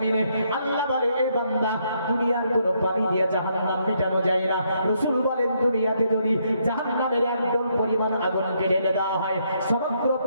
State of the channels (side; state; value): both; inverted; correlation -0.74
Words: আল্লাহ বলে এই বান্দা, দুনিয়ার কোনো পানি দিয়ে জাহান্নাম মেটানো যায় না। রাসূল বলেন দুনিয়াতে যদি জাহান্নামের 1 ডল পরিমাণ আগুনকে ঢেলে দেওয়া হয়, সমগ্র